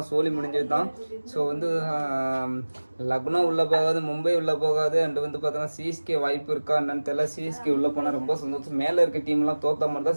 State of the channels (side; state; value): both; inverted; correlation -1.00